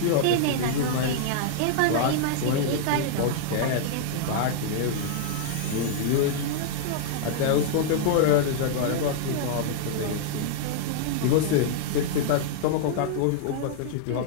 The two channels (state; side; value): different; both; correlation -0.01